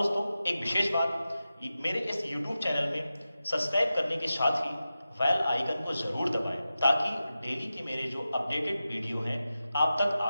एक विशेष बात, मेरे इस यूट्यूब चैनल में सब्सक्राइब करने के साथ ही बेल आइकन को जरूर दबाएं ताकि डेली के मेरे जो अपडेटेड वीडियो हैं आप तक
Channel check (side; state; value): both; inverted; correlation -0.93